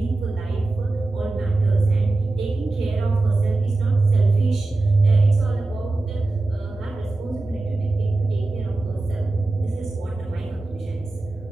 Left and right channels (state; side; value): quieter; left; 3.1 dB